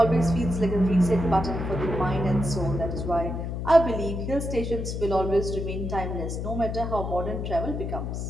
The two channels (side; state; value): left; noise; hum, 4 dB below the sound